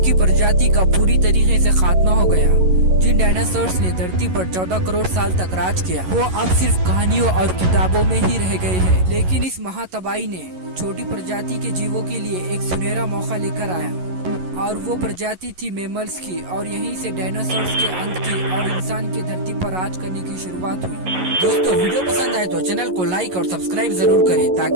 प्रजाति का पूरी तरीके से खात्मा हो गया। जिन डायनासोर्स ने धरती पर 14 करोड़ साल तक राज किया वो अब सिर्फ कहानियों और किताबों में ही रह गए हैं। लेकिन इस महातबाही ने छोटी प्रजाति के जीवों के लिए एक सुनहरा मौका लेकर आया और वो प्रजाति थी मैमल्स की और यहीं से डायनासोर्स के अंत की और इंसान की धरती पर राज करने की शुरुआत हुई। दोस्तों वीडियो पसंद आए तो चैनल को लाइक और सब्सक्राइब जरूर करें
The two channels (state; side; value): late; left; 11 ms